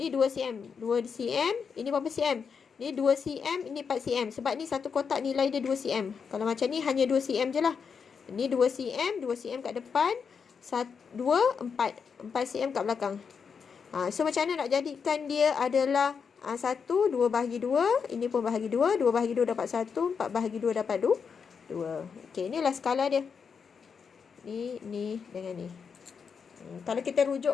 2 cm. 2 cm. Ini berapa cm? Ni 2 cm, ini 4 cm. Sebab ni satu kotak nilai dia 2 cm. Kalau macam ni hanya 2 cm je lah. Ni 2 cm, 2 cm kat depan. 4 cm kat belakang. So macam mana nak jadikan dia adalah 1, 2 bahagi 2. Ini pun bahagi 2. 2 bahagi 2 dapat 1. 4 bahagi 2 dapat 2. Okey, inilah skala dia. Ni dengan ni. Kalau kita rujuk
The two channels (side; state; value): right; quieter; 6.2 dB